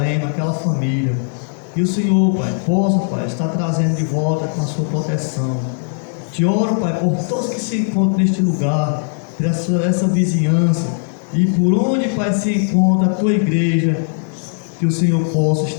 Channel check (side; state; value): right; silent; digital silence